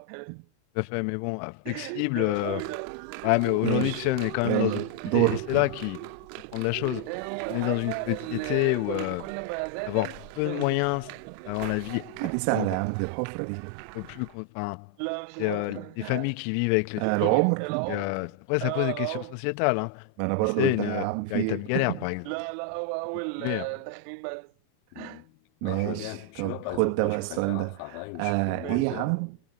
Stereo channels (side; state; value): both; different; correlation 0.00